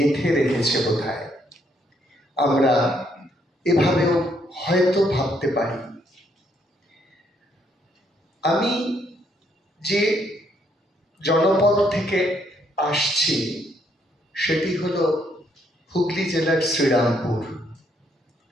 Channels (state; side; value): normal; both; correlation 0.71